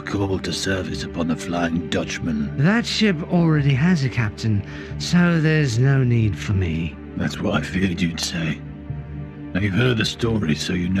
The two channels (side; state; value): both; identical; correlation 1.00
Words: called to service upon the Flying Dutchman. That ship already has a captain, so there's no need for me. That's what I feared you'd say. Now you've heard the story, so you